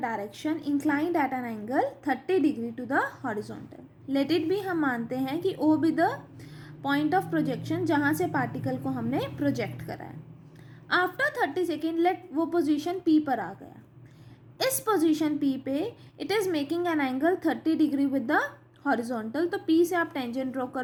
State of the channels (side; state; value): both; identical; correlation 1.00